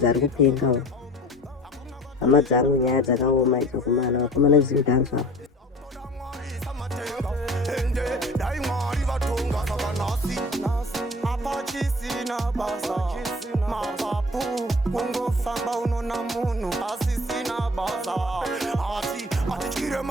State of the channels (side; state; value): both; normal; correlation 0.44